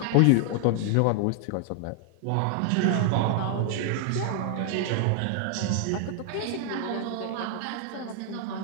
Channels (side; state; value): both; different; correlation 0.00